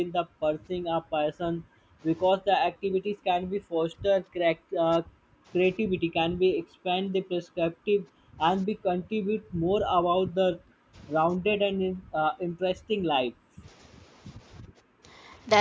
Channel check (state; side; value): identical; both; correlation 1.00